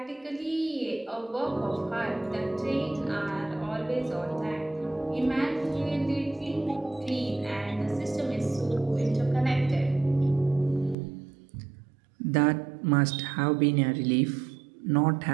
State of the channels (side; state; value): left; drops out; at 11.0 s